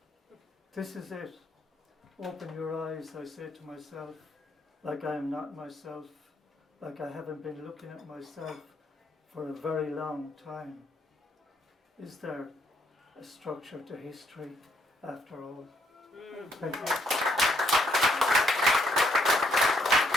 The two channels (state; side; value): normal; both; correlation 0.71